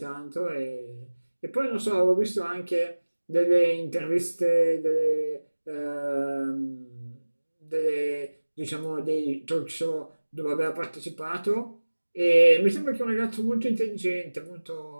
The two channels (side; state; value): both; inverted; correlation -1.00